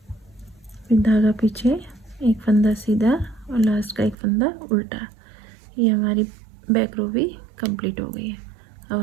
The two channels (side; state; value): left; drops out; at 4.2 s